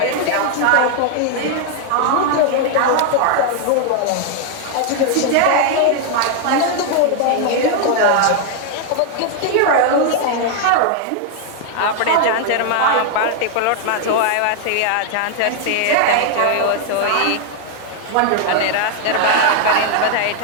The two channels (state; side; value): different; both; correlation 0.00